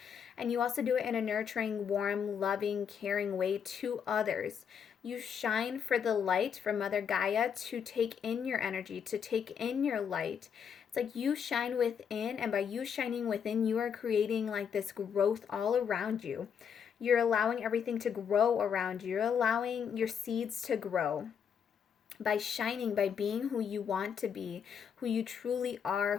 And you also do it in a nurturing, warm, loving, caring way to others. You shine for the light from Mother Gaia to take in your energy, to take in your light. It's like you shine within, and by you shining within, you are creating like this growth all around you. You're allowing everything to grow around you. You're allowing your seeds to grow. By shining, by being who you want to be, who you truly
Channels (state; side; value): quieter; right; 7.4 dB